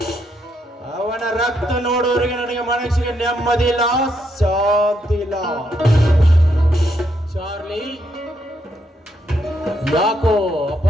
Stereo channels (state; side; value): normal; both; correlation 0.77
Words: ಅವನ ರಕ್ತ ನೋಡೋರಿಗೆ ನನಗೆ ಮನಸ್ಸಿಗೆ ನೆಮ್ಮದಿ ಇಲ್ಲ, ಶಾಂತಿ ಇಲ್ಲ. ಚಾರ್ಲಿ, ಯಾಕೋ